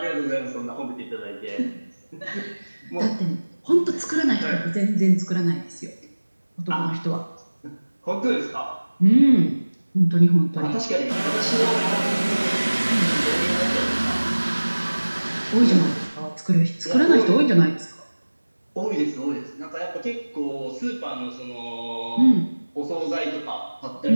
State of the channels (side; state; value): both; inverted; correlation -1.00